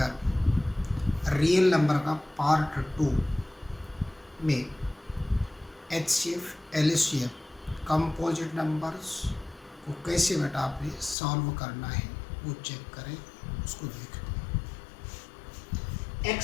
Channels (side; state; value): right; drops out; at 11.2 s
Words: real number का पार्ट 2 में एचसीएफ एलसीएम कंपोजिट नंबर्स को कैसे बेटा आपने सॉल्व करना है वो चेक करें, उसको देखें।